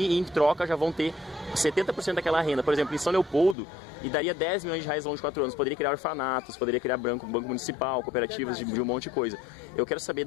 em troca já vão ter 70% daquela renda, por exemplo, em São Leopoldo, e daria 10 milhões de reais ao longo de 4 anos. Poderia criar orfanatos, poderia criar banco municipal, cooperativas de um monte de coisa. Eu quero saber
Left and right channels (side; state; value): right; drops out; at 3.6 s